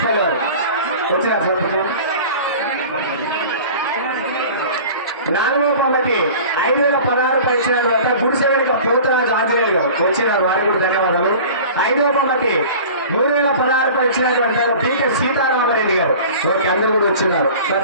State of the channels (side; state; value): both; inverted; correlation -0.40